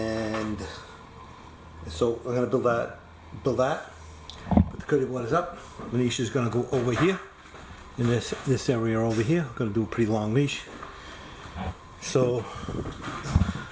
so I'm going to build that. But the curdy board is up. The niche is going to go over here in this area over here. I'm going to do a pretty long niche. So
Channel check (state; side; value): identical; both; correlation 1.00